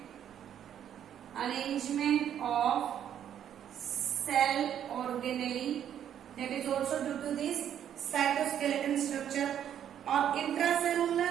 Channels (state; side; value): quieter; left; 9.8 dB